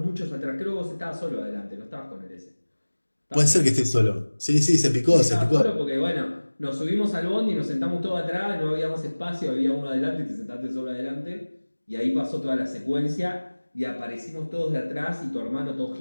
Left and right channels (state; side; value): inverted; both; correlation -1.00